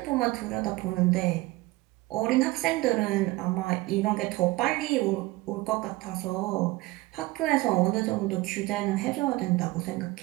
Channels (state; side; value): quieter; left; 20.3 dB